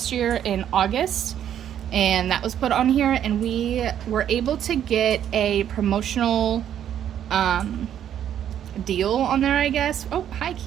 year in August, and that was put on here, and we were able to get a promotional deal on there, I guess. Oh, hi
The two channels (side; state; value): left; quieter; 10.1 dB